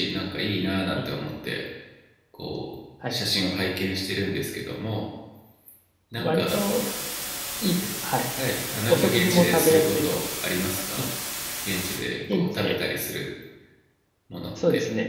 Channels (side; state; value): both; identical; correlation 1.00